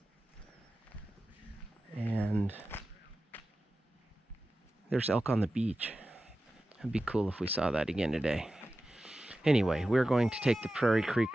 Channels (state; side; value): normal; both; correlation 0.94